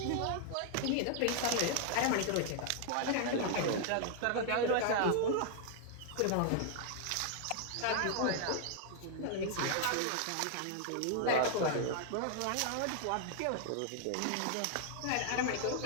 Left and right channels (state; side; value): different; both; correlation 0.00